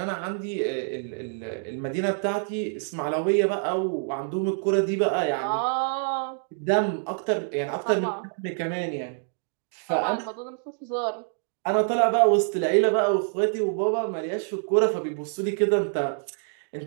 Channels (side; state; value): left; silent; digital silence